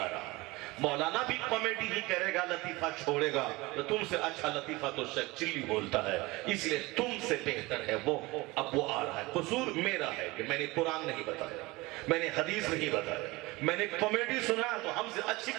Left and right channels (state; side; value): quieter; left; 22.0 dB